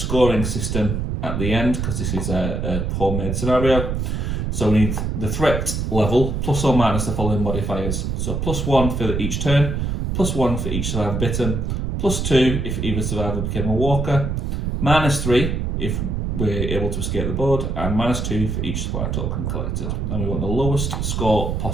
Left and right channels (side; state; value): right; noise; rumble, 1 dB below the sound